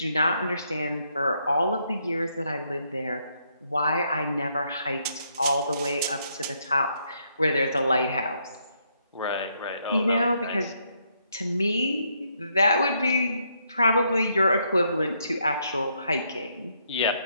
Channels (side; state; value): both; inverted; correlation -0.74